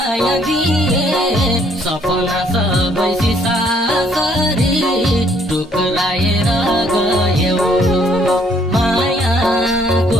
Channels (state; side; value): normal; both; correlation 0.65